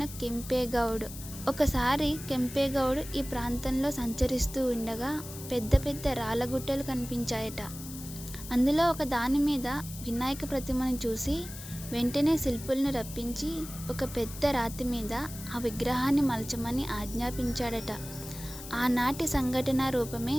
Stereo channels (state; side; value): noise; left; hiss, 13 dB below the sound